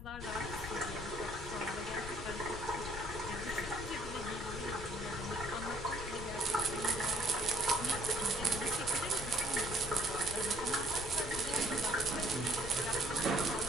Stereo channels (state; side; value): noise; left; rumble, 11 dB below the sound